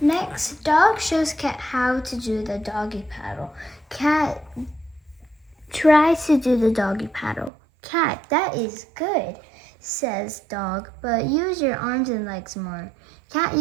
Next, Dog shows Cat how to do the doggy paddle. Cat tries to do the doggy paddle. Cat, that is good, says Dog, but use your arms and legs more. Cat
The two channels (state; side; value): drops out; left; at 7.5 s